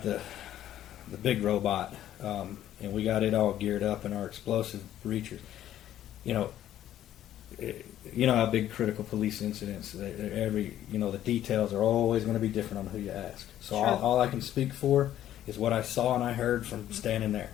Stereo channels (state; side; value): quieter; right; 12.1 dB